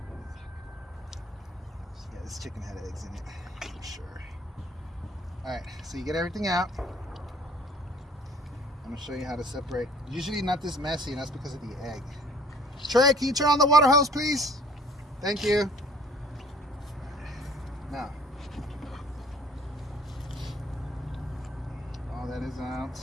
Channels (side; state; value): both; normal; correlation 0.54